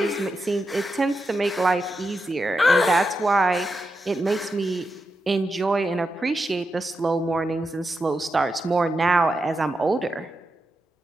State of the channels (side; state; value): both; normal; correlation 0.87